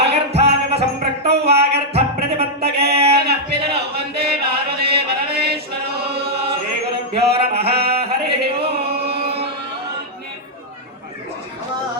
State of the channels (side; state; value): both; normal; correlation -0.05